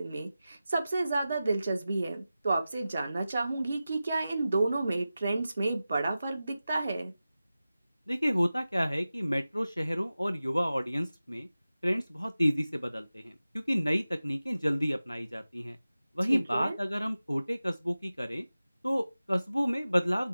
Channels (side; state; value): both; inverted; correlation -0.95